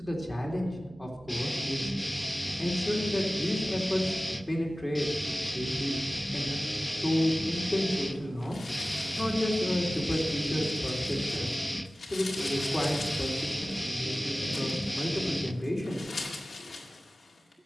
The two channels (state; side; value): normal; both; correlation 0.97